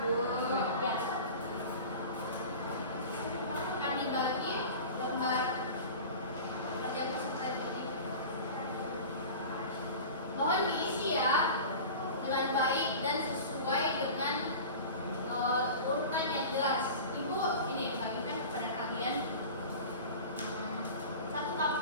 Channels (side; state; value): both; inverted; correlation -0.35